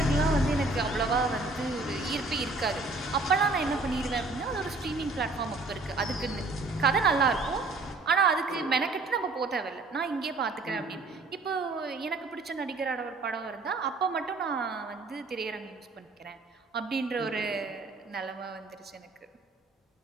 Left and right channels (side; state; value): left; quieter; 3.4 dB